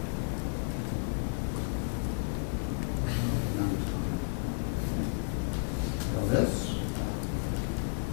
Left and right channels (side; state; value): right; silent; digital silence